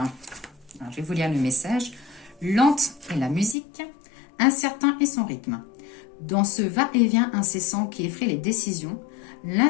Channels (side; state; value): right; drops out; at 3.6 s